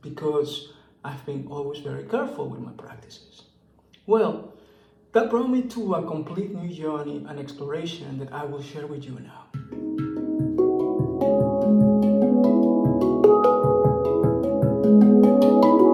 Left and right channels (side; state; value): both; identical; correlation 1.00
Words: because I've been always very careful with my practices. Well, that brought me to a complete new journey and exploration that I will share with you now.